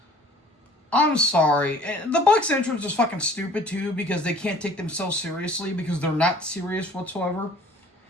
I'm sorry. The Bucks entrance is fucking stupid too because they can't take themselves seriously because they're not serious whatsoever.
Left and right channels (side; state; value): both; normal; correlation 0.51